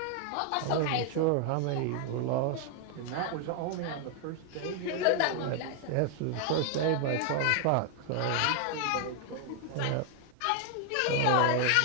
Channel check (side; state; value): both; different; correlation 0.00